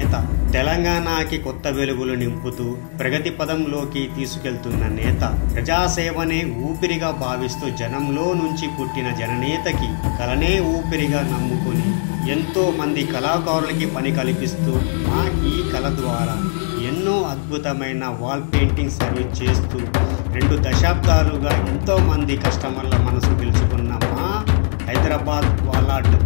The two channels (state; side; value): silent; right; digital silence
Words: తెలంగాణకి కొత్త వెలుగులు నింపుతూ ప్రగతి పదంలోకి తీసుకెళ్తున్న నేత, ప్రజాసేవనే ఊపిరిగా భావిస్తూ జనంలో నుంచి పుట్టిన జననేతకి కలనే ఊపిరిగా నమ్ముకుని ఎంతో మంది కళాకారులకి పని కల్పిస్తూ ఈ కళ ద్వారా ఎన్నో అద్భుతమైన వాల్ పెయింటింగ్ సర్వీస్ చేస్తూ 2 దశాబ్దాలుగా ఎంతో మంది కస్టమర్ల మనసు గెలుచుకున్న మా హైదరాబాద్ వాలాట్